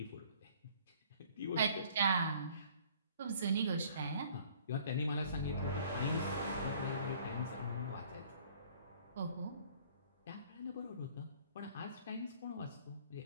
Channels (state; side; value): inverted; both; correlation -0.55